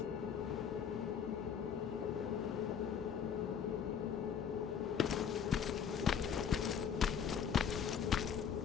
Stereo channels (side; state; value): right; quieter; 7.6 dB